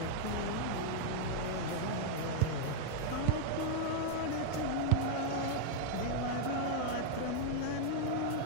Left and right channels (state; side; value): different; both; correlation -0.01